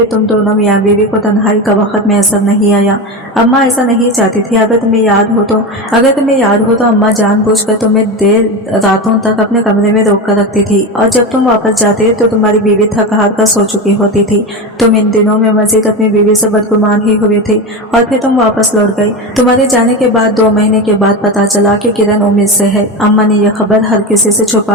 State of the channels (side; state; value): both; normal; correlation 0.20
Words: तुम दोनों मियाँ बीवी को तन्हाई का वक्त मैसर नहीं आया। अम्मा ऐसा नहीं चाहती थी। अगर तुम्हें याद हो तो अम्मा जानबूझकर तुम्हें देर रातों तक अपने कमरे में रोक कर रखती थी और जब तुम वापस जाते तो तुम्हारी बीवी थक हार कर सो चुकी होती थी। तुम इन दिनों में मजीद अपनी बीवी से बदगुमान ही हुए थे और फिर तुम वापस लौट गई। तुम्हारे जाने के बाद 2 महीने के बाद पता चला कि किरण उम्मीद से है। अम्मा ने यह खबर हर किसी से